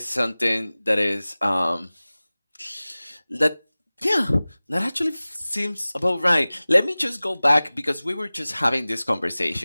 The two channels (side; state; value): both; inverted; correlation -0.99